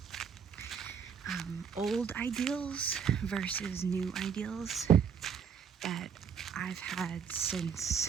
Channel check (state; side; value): quieter; left; 7.0 dB